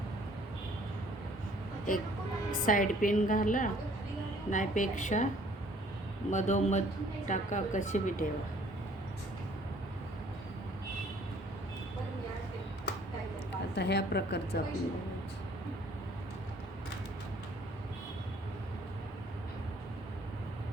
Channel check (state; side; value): normal; both; correlation 0.58